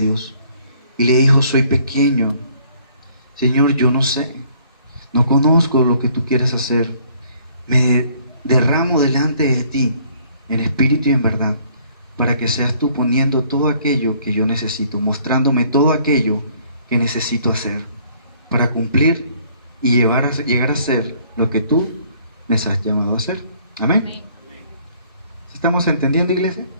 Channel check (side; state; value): both; inverted; correlation -0.61